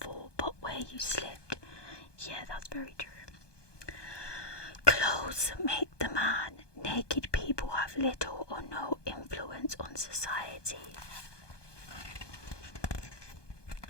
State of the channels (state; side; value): late; right; 1.2 ms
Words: but where you slipped. Yeah, that's very true. Clothes make the man. Naked people have little or no influence on society.